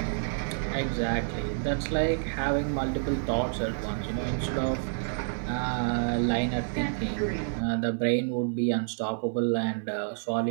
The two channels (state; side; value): silent; left; 59 dB below the other